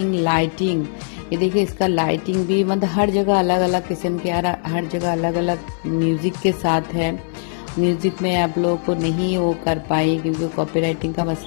लाइटिंग, ये देखिए इसका लाइटिंग भी मतलब हर जगह अलग अलग किस्म के, हर जगह अलग अलग म्यूज़िक के साथ है। म्यूज़िक में आप लोगों को नहीं वो कर पाई क्योंकि कॉपीराइटिंग का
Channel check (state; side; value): silent; right; digital silence